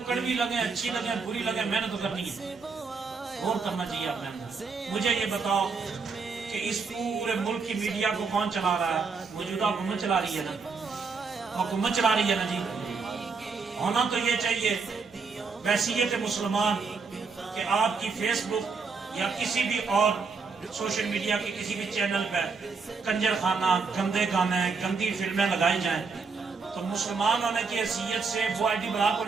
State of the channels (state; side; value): quieter; left; 4.8 dB